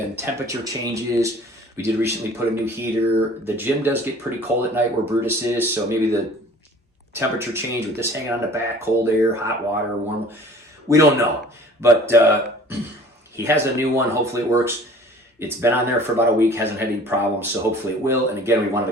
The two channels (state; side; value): normal; both; correlation 0.48